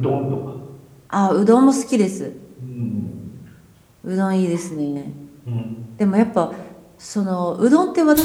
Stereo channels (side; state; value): both; identical; correlation 1.00